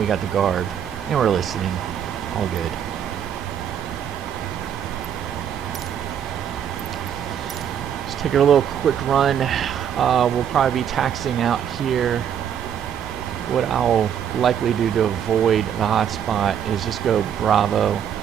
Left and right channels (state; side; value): quieter; left; 8.9 dB